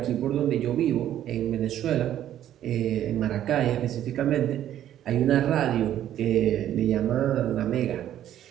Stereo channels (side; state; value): left; quieter; 11.5 dB